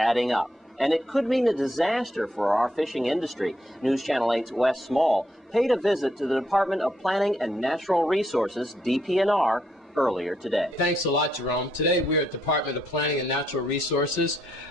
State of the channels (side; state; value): both; normal; correlation 0.76